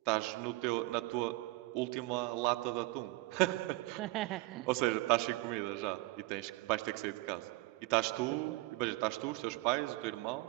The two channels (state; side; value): quieter; left; 21.3 dB